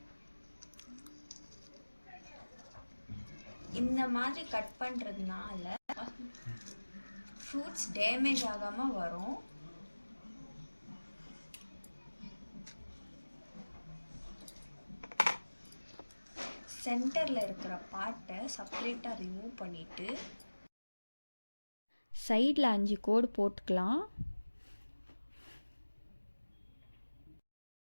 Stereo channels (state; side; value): inverted; both; correlation -1.00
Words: இந்த மாதிரி கட் பண்ணுறதுனால ஃப்ரூட்ஸ் டேமேஜ் ஆகாமல் வரும். சென்டரில் இருக்கிற பார்ட்டை செப்பரேட்டாக ரிமூவ் பண்ணிவிட்டு சைடில் 5 கோடு போட்டுக்கலாம்.